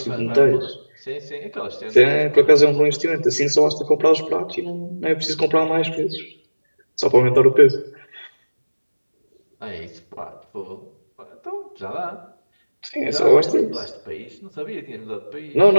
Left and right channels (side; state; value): both; inverted; correlation -1.00